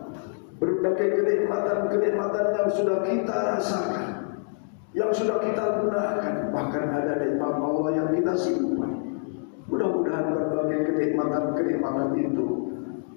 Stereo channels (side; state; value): right; silent; digital silence